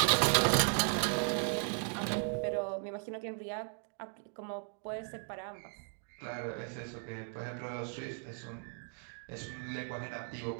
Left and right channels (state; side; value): silent; left; 53 dB below the other